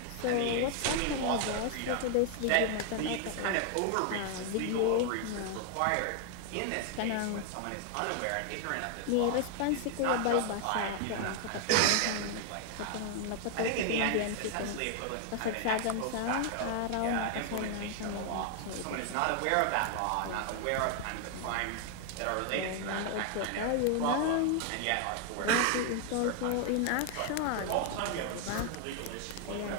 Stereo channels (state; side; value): different; both; correlation 0.00